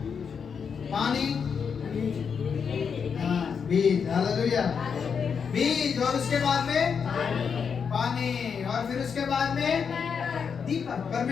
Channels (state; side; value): quieter; right; 6.5 dB